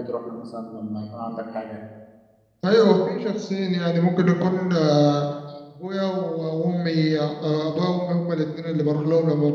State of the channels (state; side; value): identical; both; correlation 1.00